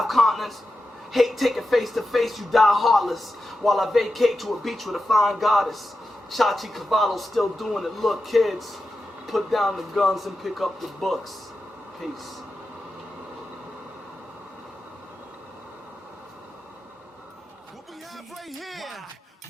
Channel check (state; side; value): normal; both; correlation 0.91